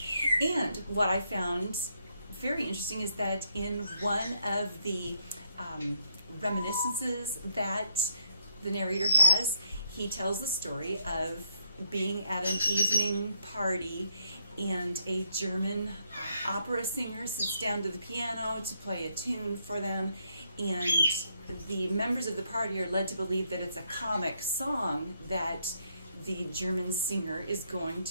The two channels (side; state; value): both; inverted; correlation -0.76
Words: And what I found very interesting is that in one of the reminiscences that the narrator has, he tells the story of being at an evening party and a German opera singer sits down to the piano to play a tune for them, and the members of the party are led to believe that it's a comic song that the German singer is going